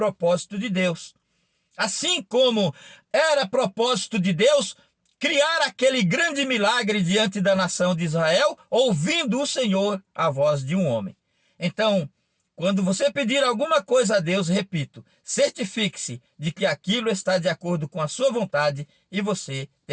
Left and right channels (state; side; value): identical; both; correlation 1.00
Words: de Deus. Assim como era propósito de Deus criar aquele grande milagre diante da nação de Israel, ouvindo o Senhor a voz de um homem. Então, quando você pedir alguma coisa a Deus, repito, certifique-se de que aquilo está de acordo com a sua vontade e você